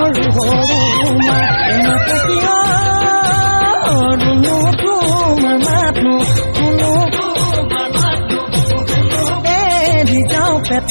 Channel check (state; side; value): inverted; both; correlation -1.00